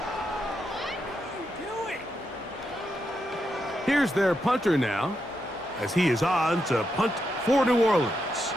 Here's their punter now, as he is on to punt for New Orleans.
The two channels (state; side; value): normal; both; correlation 0.83